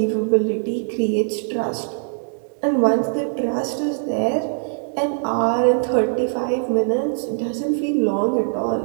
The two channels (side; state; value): left; silent; digital silence